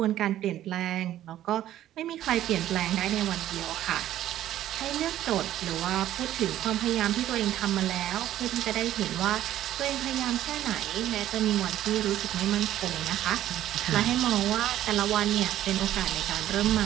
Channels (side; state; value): left; quieter; 12.8 dB